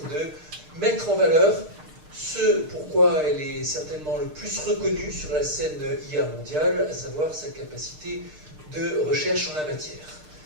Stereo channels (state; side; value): late; left; 6.6 ms